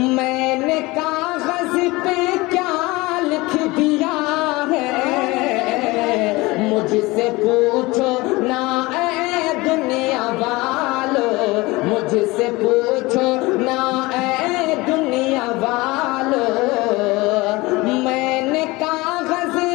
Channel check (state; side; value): quieter; right; 22.1 dB